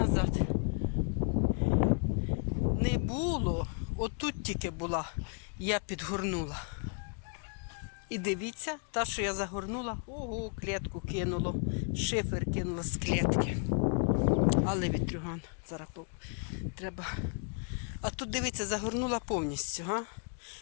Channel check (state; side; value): quieter; right; 38.9 dB